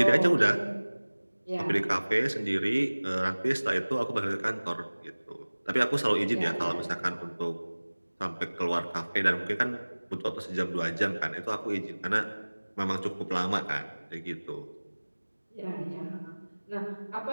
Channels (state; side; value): inverted; both; correlation -1.00